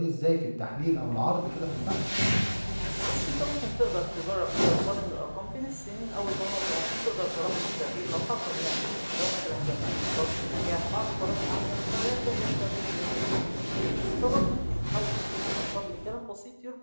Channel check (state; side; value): inverted; both; correlation -1.00